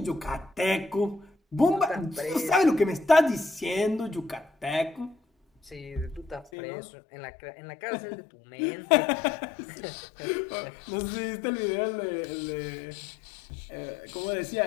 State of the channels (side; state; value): right; drops out; at 6.5 s